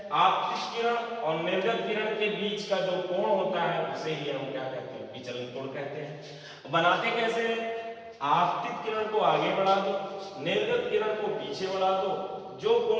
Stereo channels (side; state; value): both; identical; correlation 1.00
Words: आपतित किरण और निर्गत किरण के बीच का जो कोण होता है उसे ही हम क्या कहते हैं, विचलन कोण कहते हैं। बनाते कैसे हैं, आपतित किरण को आगे बढ़ा दो, निर्गत किरण को पीछे बढ़ा दो, जो